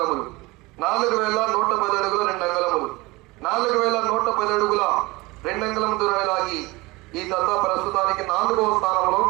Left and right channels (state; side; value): quieter; left; 22.5 dB